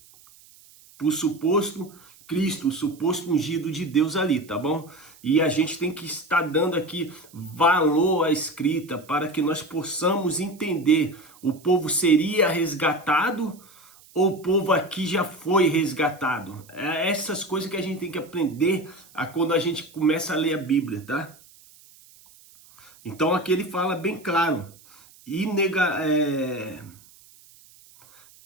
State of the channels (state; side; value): noise; right; hiss, 25 dB below the sound